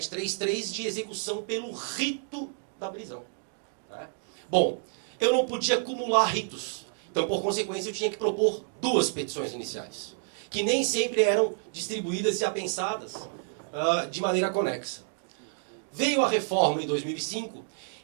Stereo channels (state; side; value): silent; left; digital silence